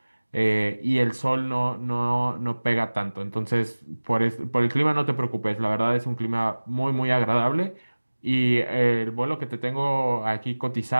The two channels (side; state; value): both; inverted; correlation -1.00